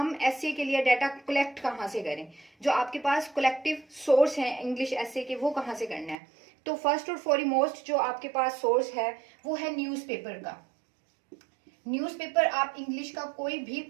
एस्से के लिए डाटा कलेक्ट कहाँ से करें, जो आपके पास कलेक्टिव सोर्स है इंग्लिश एस्से के वो कहाँ से करना है। तो फर्स्ट और फॉरमोस्ट जो आपके पास सोर्स है वो है न्यूज़पेपर का। न्यूज़पेपर आप इंग्लिश का कोई भी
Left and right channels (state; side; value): drops out; left; at 6.2 s